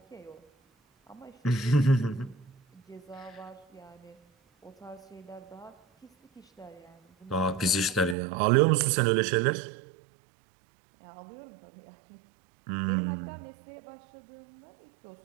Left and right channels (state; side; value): drops out; left; at 8.2 s